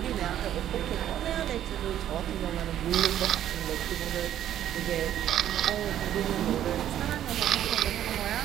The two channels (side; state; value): left; quieter; 11.2 dB